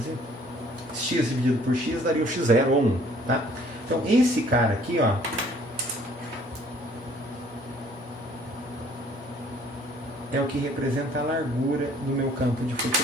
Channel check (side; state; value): both; normal; correlation 0.58